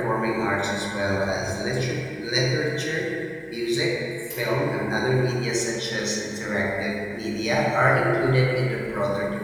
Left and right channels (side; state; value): both; identical; correlation 1.00